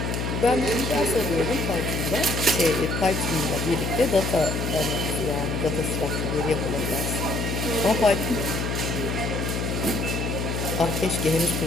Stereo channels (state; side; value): noise; left; hum, 1 dB below the sound